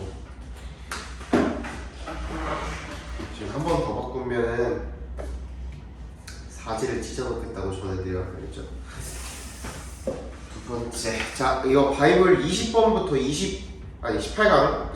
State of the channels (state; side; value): identical; both; correlation 1.00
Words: 지금 한 번 더 바꾸면은 사지를 찢어놓겠다고 전해드려야 되겠죠. 두 번째, 자 이거 바이블 20번부터 18강